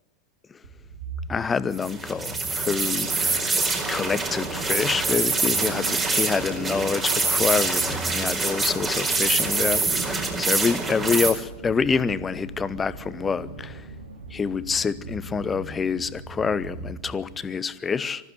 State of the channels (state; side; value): normal; both; correlation 0.73